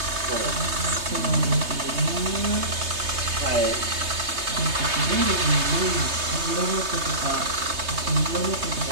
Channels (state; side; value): late; left; 3.2 ms